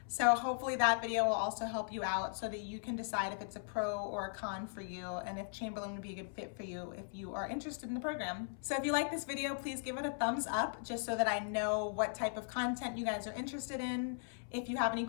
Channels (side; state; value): right; silent; 52 dB below the other